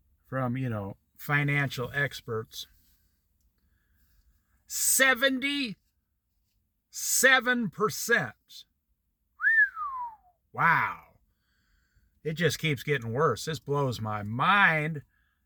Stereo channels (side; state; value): both; identical; correlation 1.00